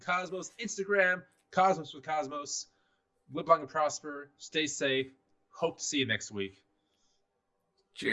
Cosmos, Instagram, Cosmos with Cosmos. Live long and prosper. Stay safe. Hope to see you next week.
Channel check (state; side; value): identical; both; correlation 1.00